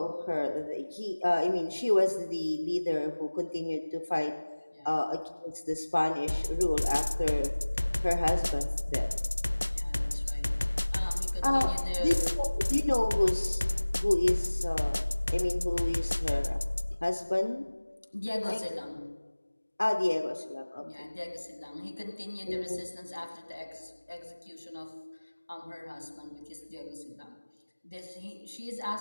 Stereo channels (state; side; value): inverted; both; correlation -1.00